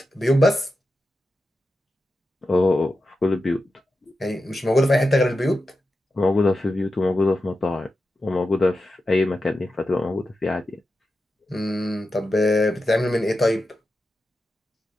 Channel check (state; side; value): normal; both; correlation 0.90